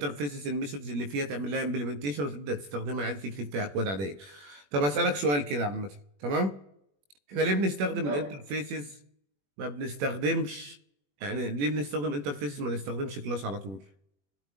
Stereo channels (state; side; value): late; left; 21 ms